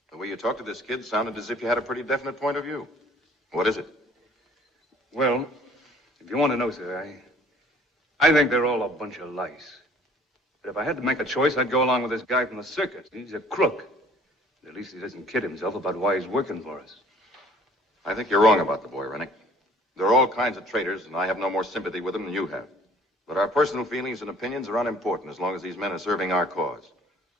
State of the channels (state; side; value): normal; both; correlation 0.54